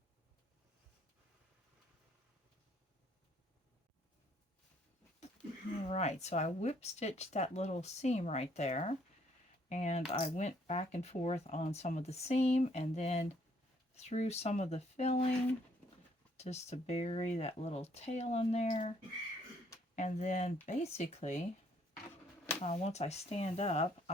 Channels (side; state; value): both; normal; correlation 0.66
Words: Alright, so I whip stitched that little seam right there, and I went back and forth on some of the seam and then through some of the filling just to bury that little tail in there. And then basically once I stand up,